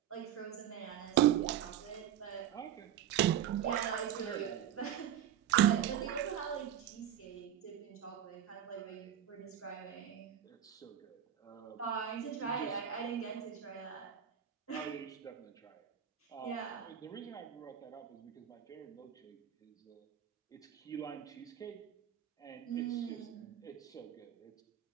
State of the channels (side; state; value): left; quieter; 10.4 dB